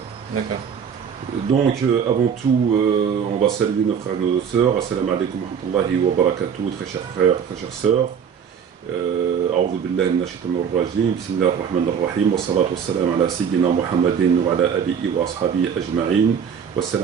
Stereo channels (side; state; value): left; quieter; 7.4 dB